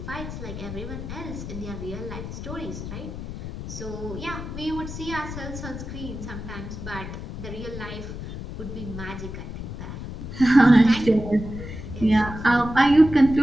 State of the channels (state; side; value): noise; left; rumble, 8 dB below the sound